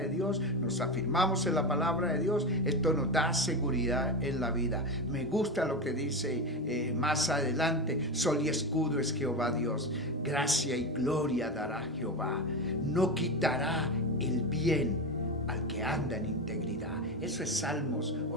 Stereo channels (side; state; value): both; normal; correlation 0.18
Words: Dios, nos afirmamos en la palabra de Dios. Esto nos da seguridad en la vida. Me gusta lo que dice más adelante: sol y escudo es Jehová Dios, gracia y gloria dará Jehová, no quitará el bien al que anda en integridad. Eso es Salmos